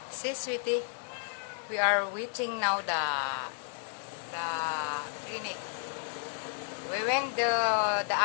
See sweetie, we are waiting now the clinic. We went the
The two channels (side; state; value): right; silent; 56 dB below the other